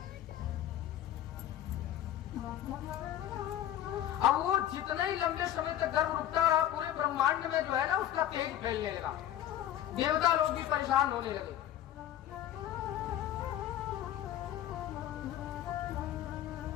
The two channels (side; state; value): right; quieter; 11.8 dB